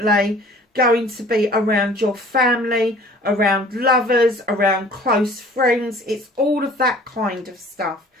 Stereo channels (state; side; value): normal; both; correlation 0.50